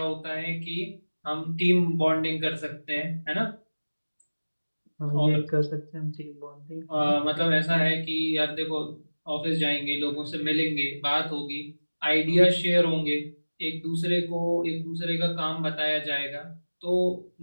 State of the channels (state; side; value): inverted; both; correlation -1.00